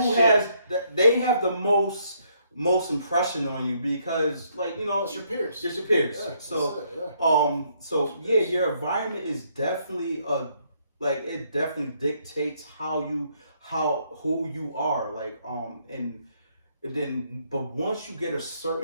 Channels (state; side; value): inverted; both; correlation -0.70